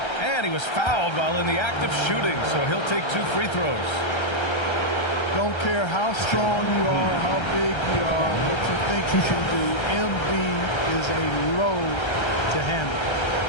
And he was fouled while in the act of shooting, so he'll take 2 free throws. Don't care how strong you are, how big you are, what you think you can do. Embiid is a load to handle.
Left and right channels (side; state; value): right; late; 1.3 ms